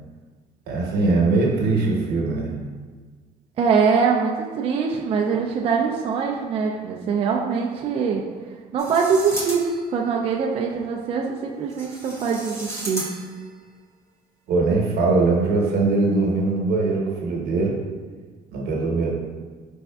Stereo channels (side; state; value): left; quieter; 4.1 dB